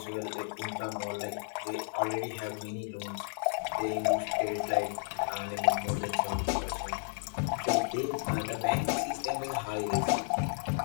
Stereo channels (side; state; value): right; silent; digital silence